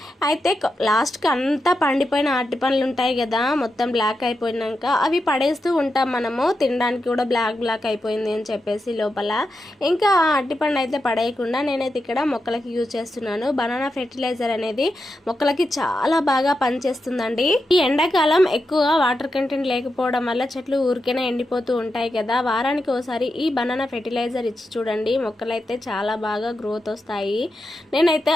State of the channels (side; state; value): both; normal; correlation 0.88